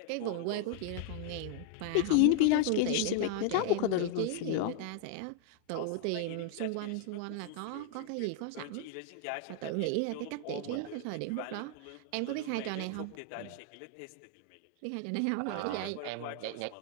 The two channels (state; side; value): different; both; correlation 0.00